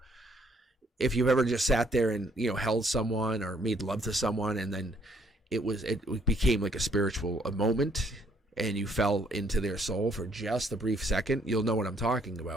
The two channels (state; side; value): normal; both; correlation 0.67